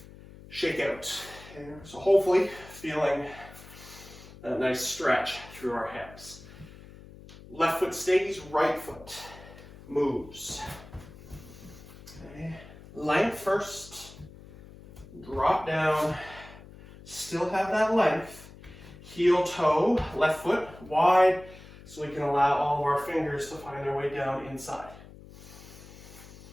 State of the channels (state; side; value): noise; left; hum, 18 dB below the sound